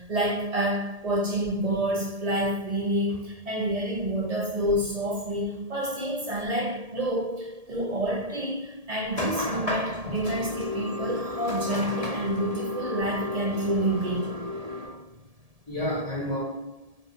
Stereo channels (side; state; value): left; late; 1.7 ms